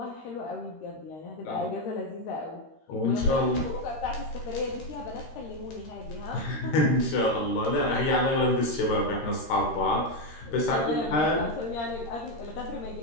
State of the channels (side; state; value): right; late; 13 ms